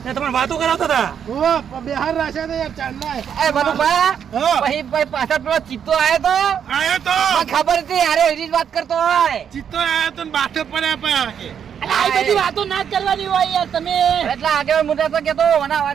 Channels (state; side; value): quieter; left; 8.2 dB